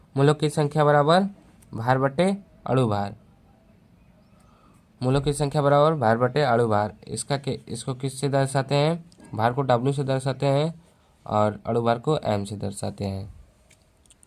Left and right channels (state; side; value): identical; both; correlation 1.00